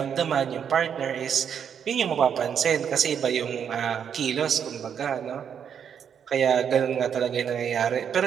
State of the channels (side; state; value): left; quieter; 8.0 dB